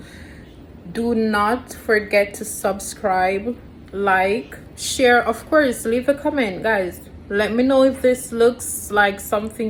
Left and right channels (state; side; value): identical; both; correlation 1.00